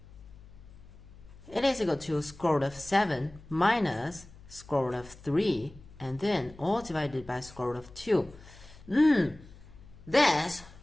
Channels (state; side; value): noise; left; hum, 20 dB below the sound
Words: It is equal to square root of 7 minus square root of 3 and then all divided by square root of 2. This